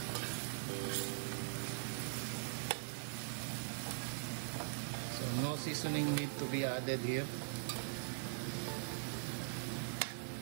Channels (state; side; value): silent; left; digital silence